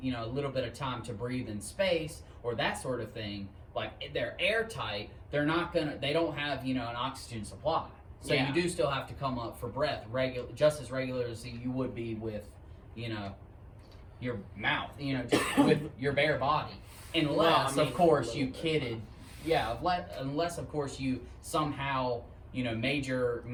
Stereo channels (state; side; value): identical; both; correlation 1.00